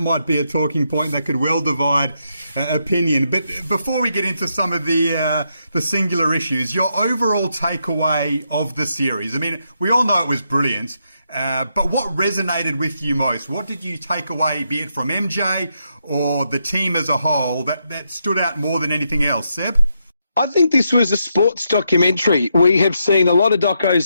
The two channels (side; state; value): both; inverted; correlation -0.81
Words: be a talking point that could well divide opinion. But before we get into some of the singular issues, your overall takeaway of the series. I mean, we all know it was brilliant, but what resonated with you most? What did you take away, be it from MJ or the team as a whole, that stood out more than anything else? Seb? I think this was a sports documentary. We have seen a lot of